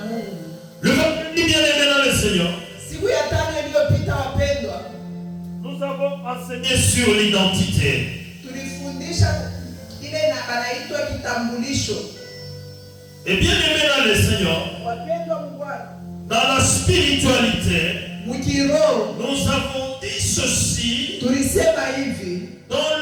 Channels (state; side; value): identical; both; correlation 1.00